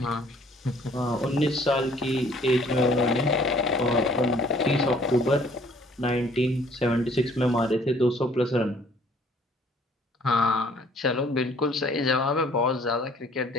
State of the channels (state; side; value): normal; both; correlation 0.58